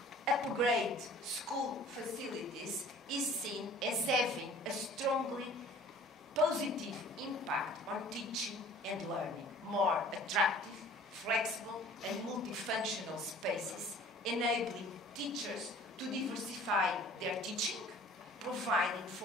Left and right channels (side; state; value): both; normal; correlation 0.49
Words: upgrade school facilities is seen as having a strongly positive impact on teaching and learning. More attractive, flexible and multifunctional spaces enabling teachers to diversify their teaching, providing